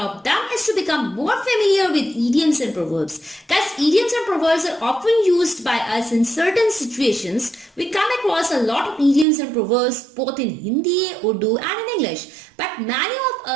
them is to become more familiar with idioms and proverbs. Guys, idioms and proverbs are often used by us in certain situations. We come across a lot of idioms and proverbs both in Hindi, Urdu and in English. But many of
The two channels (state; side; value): drops out; left; at 9.2 s